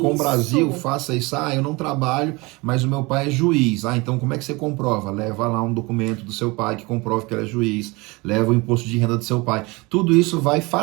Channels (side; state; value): left; quieter; 24.9 dB